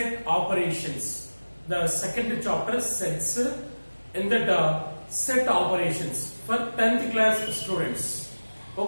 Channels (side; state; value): both; inverted; correlation -1.00